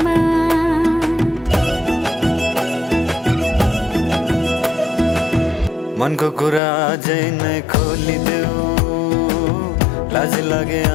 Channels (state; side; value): drops out; right; at 6.6 s